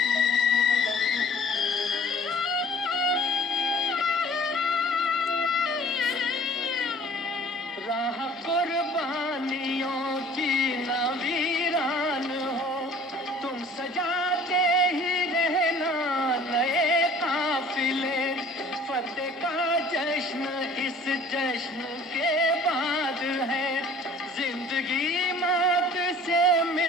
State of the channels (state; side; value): normal; both; correlation 0.50